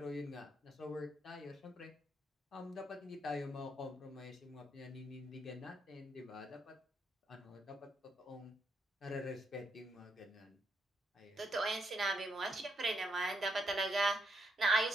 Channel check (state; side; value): normal; both; correlation 0.77